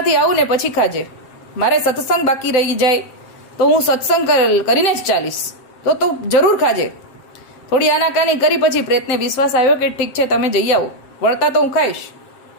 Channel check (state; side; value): late; right; 7.6 ms